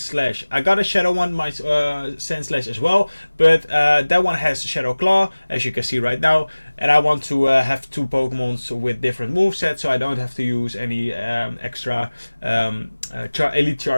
I got a Shadow one, my SANDSLASH as well, but that one has Shadow Claw, as you can see right now, and I want to have two Pokemons with different movesets, so I don't have to use any extra Elite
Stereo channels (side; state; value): both; inverted; correlation -1.00